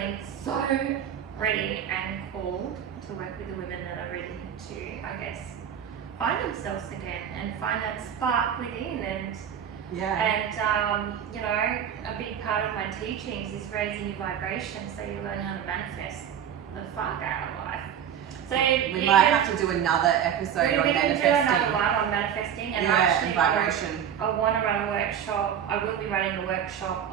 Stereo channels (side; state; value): left; quieter; 8.9 dB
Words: so ready and called to work with the women that are ready to, I guess, find themselves again and find that spark within. And you know, a big part of my teachings is raising your vibration so you learn how to manifest the fuck out of life. So we might have to do another episode on manifesting. Do another one on manifesting, and actually vibration. I want to run a workshop. I will be running a workshop